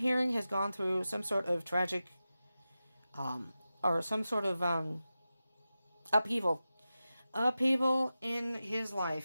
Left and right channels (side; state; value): both; inverted; correlation -0.93